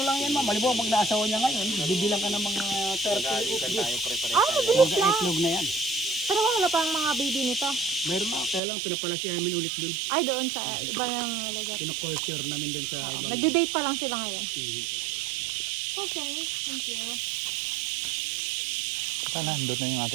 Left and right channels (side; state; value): left; drops out; at 8.6 s